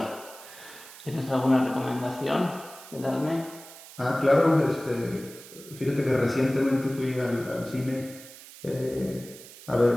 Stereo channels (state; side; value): noise; right; hiss, 17 dB below the sound